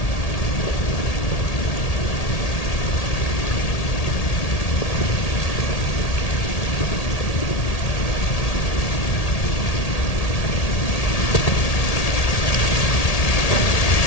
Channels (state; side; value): late; right; 1.8 ms